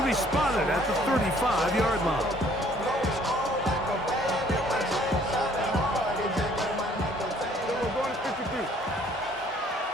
be spotted at the 35-yard line.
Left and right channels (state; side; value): normal; both; correlation 0.60